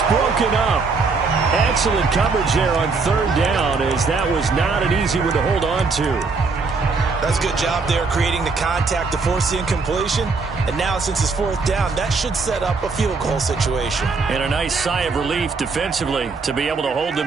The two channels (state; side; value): quieter; left; 4.3 dB